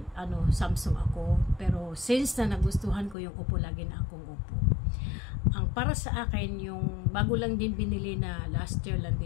Samsung ako, pero since na nagustuhan ko yung Oppo, lagi na akong Oppo. Ang para sa akin, yung bago lang din binili na last year lang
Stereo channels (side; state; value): right; drops out; at 3.2 s